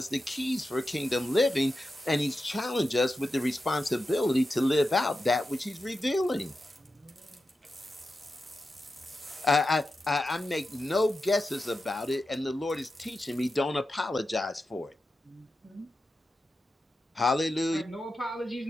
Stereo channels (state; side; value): normal; both; correlation 0.90